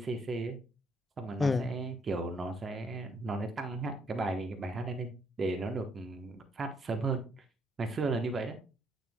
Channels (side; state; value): both; normal; correlation 0.70